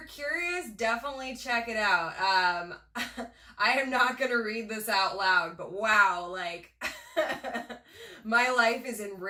curious, definitely check it out. I am not going to read this out loud, but wow, like, my life is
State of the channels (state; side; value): identical; both; correlation 1.00